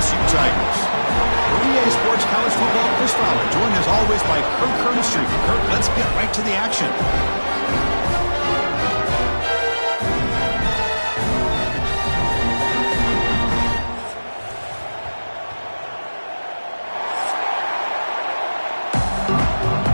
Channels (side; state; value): both; inverted; correlation -1.00